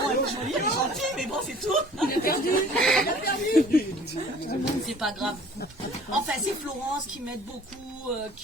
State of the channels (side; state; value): both; normal; correlation 0.50